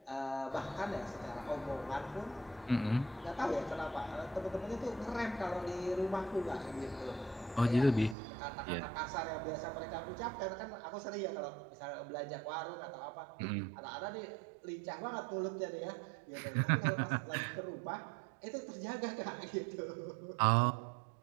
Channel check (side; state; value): left; drops out; at 8.2 s